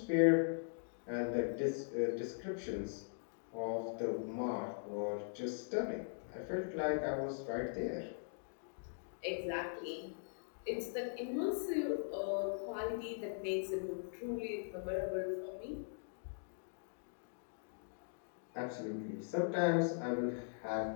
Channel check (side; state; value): right; silent; digital silence